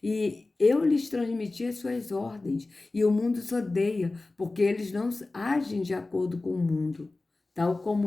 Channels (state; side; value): quieter; right; 3.2 dB